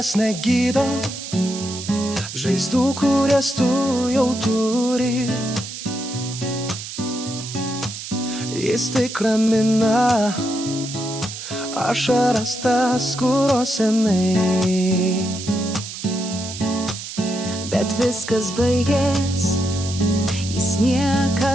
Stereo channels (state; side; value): noise; right; hiss, 9 dB below the sound